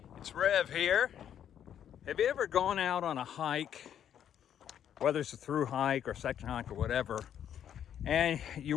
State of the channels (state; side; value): quieter; right; 9.6 dB